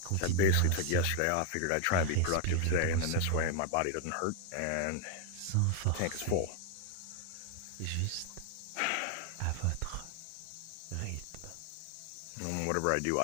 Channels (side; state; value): both; different; correlation 0.00